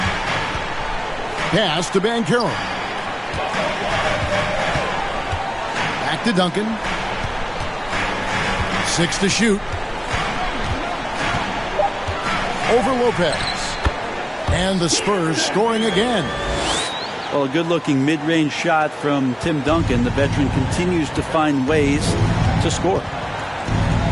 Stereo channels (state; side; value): identical; both; correlation 1.00